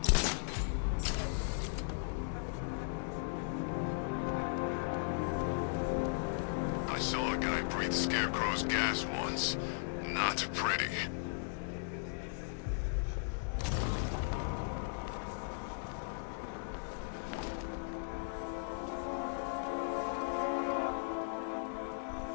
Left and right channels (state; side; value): silent; right; digital silence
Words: I saw a guy breathe Scarecrow's gas once. Not pretty.